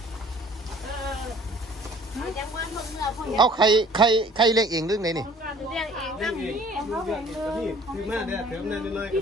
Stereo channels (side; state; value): both; normal; correlation 0.52